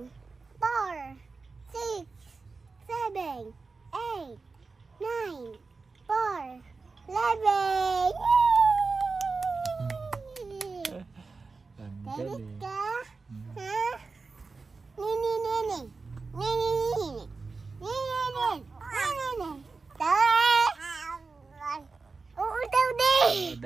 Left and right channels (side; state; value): left; quieter; 4.2 dB